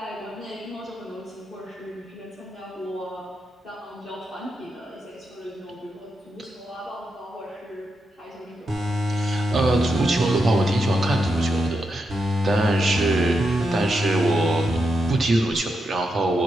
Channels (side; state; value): both; normal; correlation 0.85